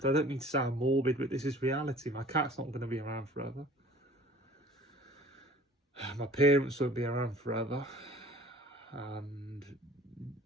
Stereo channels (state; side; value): normal; both; correlation 0.48